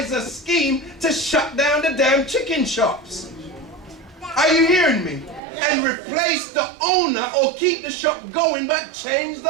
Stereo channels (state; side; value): drops out; left; at 5.4 s